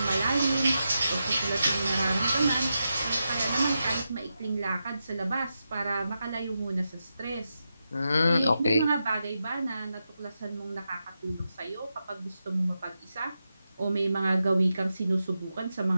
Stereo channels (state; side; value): inverted; both; correlation -0.88